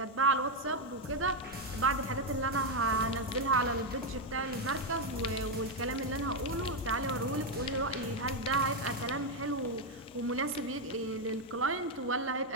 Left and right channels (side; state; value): both; normal; correlation 0.04